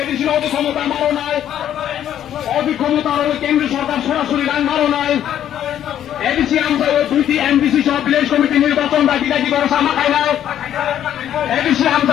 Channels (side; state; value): right; quieter; 10.7 dB